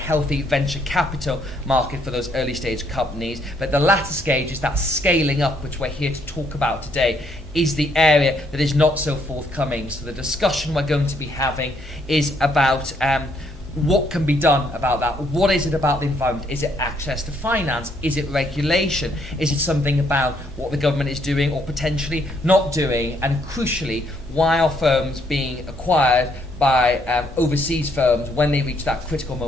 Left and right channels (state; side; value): normal; both; correlation 0.71